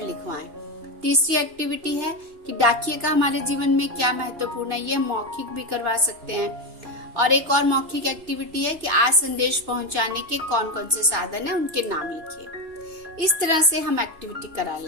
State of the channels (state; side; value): late; left; 2.9 ms